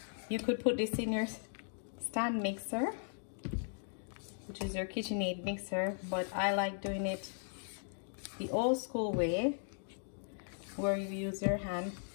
you could put this in your stand mixer, which is your KitchenAid mixer, but I like doing it the old school way, where you use your hand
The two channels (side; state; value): right; silent; digital silence